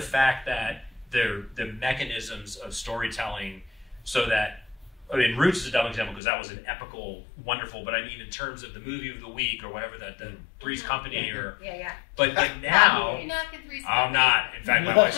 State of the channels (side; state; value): right; drops out; at 6.2 s